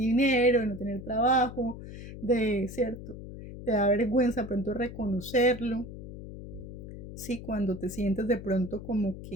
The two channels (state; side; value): noise; left; hum, 12 dB below the sound